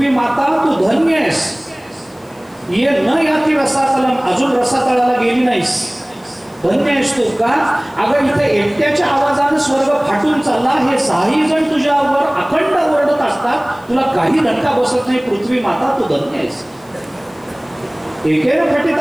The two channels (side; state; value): left; noise; hiss, 29 dB below the sound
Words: माता तू धन्य आहेस, ये न याती रसातलम, अजून रसातळाला गेली नाहीस, धन्य आहेस तू. का? अगं इथे एकट्याच्या आवाजाने स्वर्ग फाटून चालला, हे 6 जण तुझ्यावर अखंड ओरडत असतात, तुला काही धक्का बसत नाही, पृथ्वी माता तू धन्य आहेस. एकेन फटित